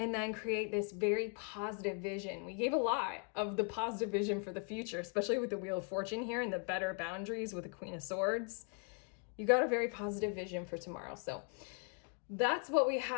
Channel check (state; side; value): quieter; right; 36.5 dB